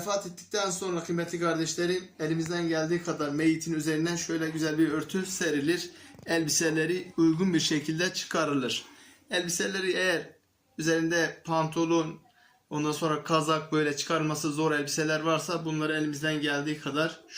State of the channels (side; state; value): both; identical; correlation 1.00